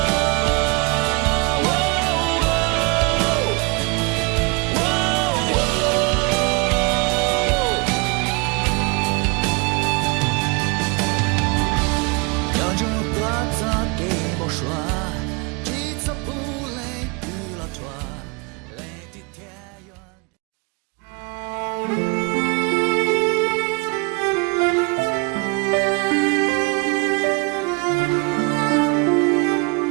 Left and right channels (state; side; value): quieter; left; 30.4 dB